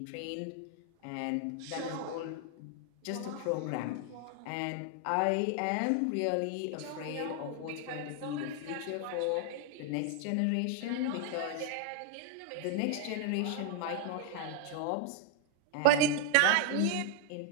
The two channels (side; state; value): both; different; correlation 0.00